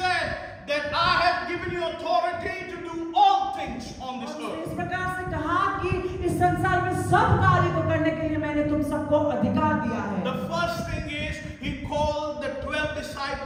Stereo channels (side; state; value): both; identical; correlation 1.00